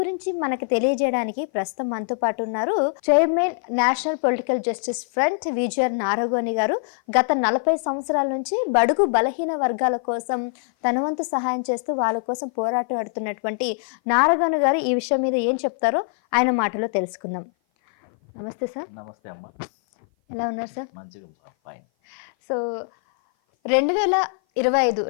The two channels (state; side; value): silent; right; 56 dB below the other